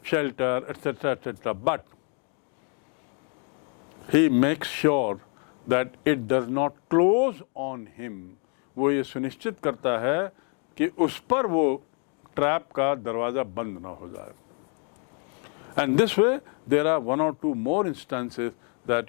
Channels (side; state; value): right; quieter; 40.0 dB